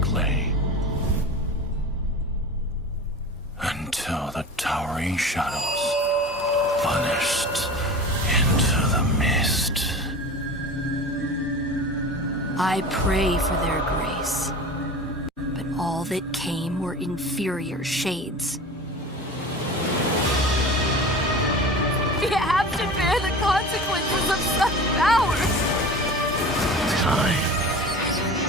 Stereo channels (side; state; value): both; normal; correlation 0.35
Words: claim. Until the towering shadows vanished into the mist. I pray for their grace, but all that came were inferior shades. We have to finish the consequences of such power. Time.